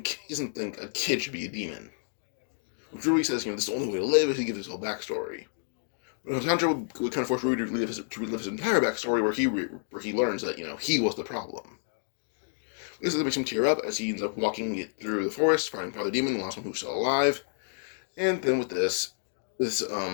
a kid should be a demon. Which Rui says, this is the only way to live, as he gives his whole backstory. But Tanjiro would kind of force Rui to relive his entire backstory, where he learns that, he was the problem. This makes him tear up as he ends up walking through the forest, finding Father Demon, the last one who's still alive. And then with this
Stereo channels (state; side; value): silent; right; digital silence